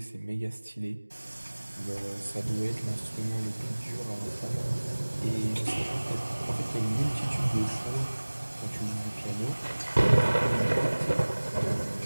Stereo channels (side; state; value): both; inverted; correlation -1.00